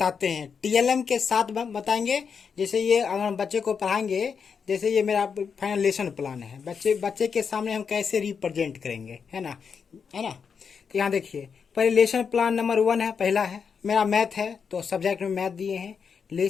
हैं। टीएलएम के साथ बताएंगे। जैसे ये अगर हम बच्चे को पढ़ाएंगे, जैसे ये मेरा फाइनल लेसन प्लान है, बच्चे बच्चे के सामने हम कैसे रिप्रेजेंट करेंगे, है ना। तो यहाँ देखिए, पहले लेसन प्लान नंबर 1 है, पहला है मेरा मैथ है, तो सब्जेक्ट में मैथ दिए हैं।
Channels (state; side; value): quieter; right; 6.3 dB